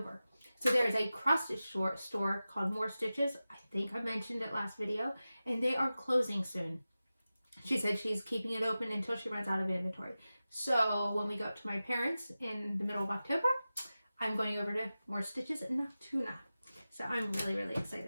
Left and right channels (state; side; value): inverted; both; correlation -0.95